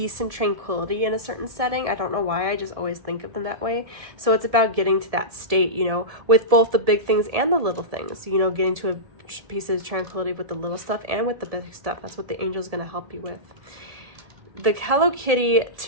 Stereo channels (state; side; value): late; left; 1.7 ms